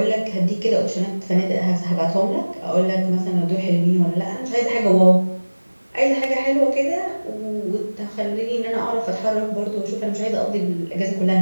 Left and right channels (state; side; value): inverted; both; correlation -1.00